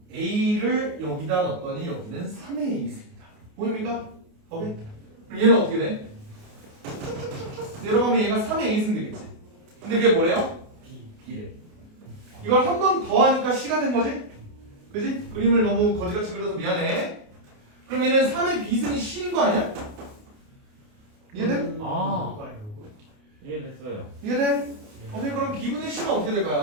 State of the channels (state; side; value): late; left; 28 ms